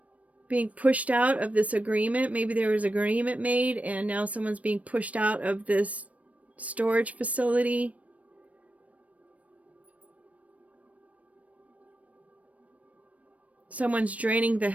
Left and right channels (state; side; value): late; left; 0.067 ms